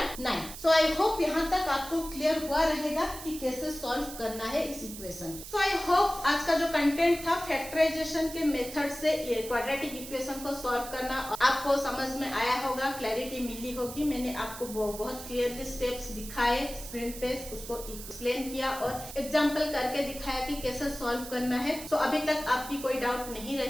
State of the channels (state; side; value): noise; right; hiss, 12 dB below the sound